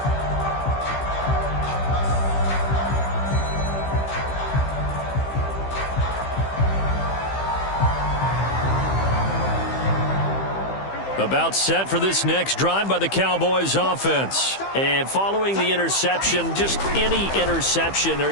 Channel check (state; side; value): late; right; 15 ms